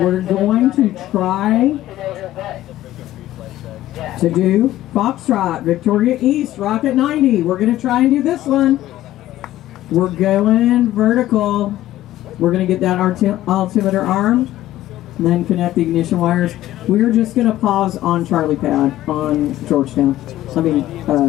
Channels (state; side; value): quieter; right; 14.4 dB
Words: going to try to do Foxtrot, Victoria East, Rocket 90. We're going to try and do this one. We're going vertical. We're going to get that altimeter arm, and then connect the ignition wires. We're just going to pause on Charlie Pad on Georgetown. I mean,